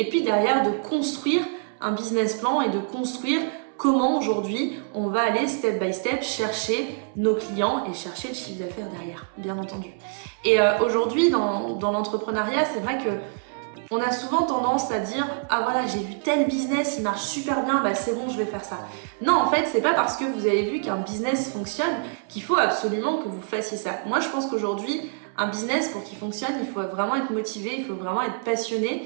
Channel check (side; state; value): left; silent; 61 dB below the other